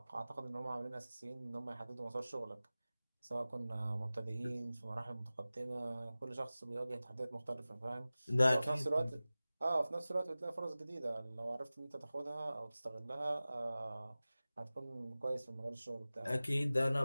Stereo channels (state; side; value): inverted; both; correlation -0.97